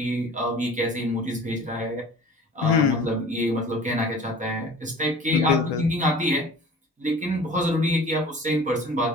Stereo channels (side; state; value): both; normal; correlation 0.43